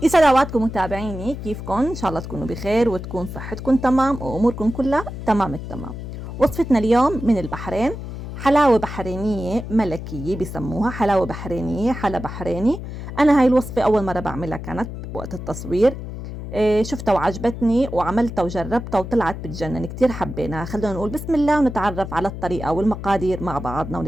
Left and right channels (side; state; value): left; noise; hum, 9 dB below the sound